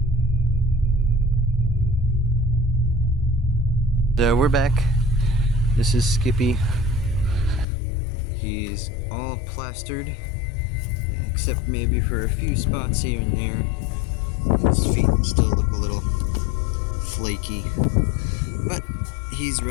So we're back. This is Skippy. He's all plastered, except maybe for a few spots here and there. His feet still look a little flaky, but he's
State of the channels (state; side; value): drops out; right; at 7.7 s